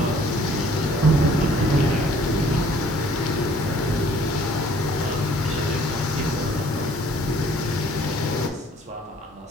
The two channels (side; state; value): both; normal; correlation 0.57